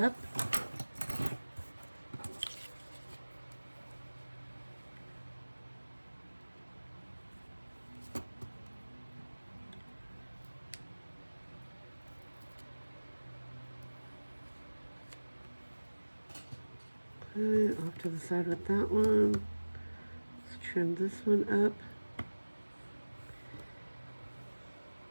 Okay, off to the side with that one. Let's trim this one up.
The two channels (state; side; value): inverted; both; correlation -1.00